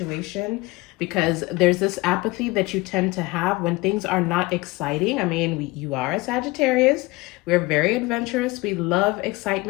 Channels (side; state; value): right; quieter; 22.3 dB